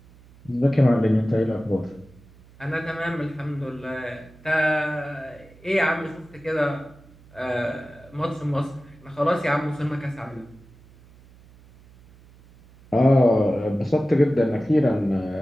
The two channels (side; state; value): right; noise; hum, 25 dB below the sound